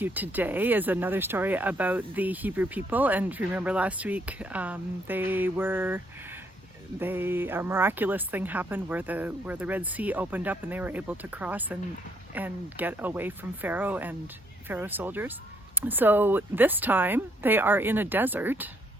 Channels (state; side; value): normal; both; correlation 0.71